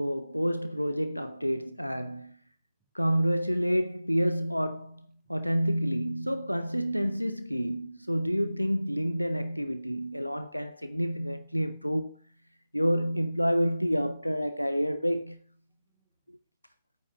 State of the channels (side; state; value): both; inverted; correlation -0.97